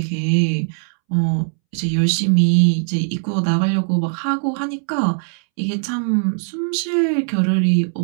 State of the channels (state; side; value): silent; left; 66 dB below the other